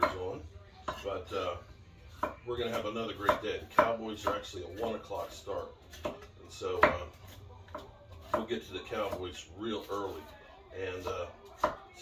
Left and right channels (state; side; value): identical; both; correlation 1.00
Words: on, but we're going to have another great day. The Cowboys are actually a 1 o'clock start, and so we'll get to the Cowboys real early. And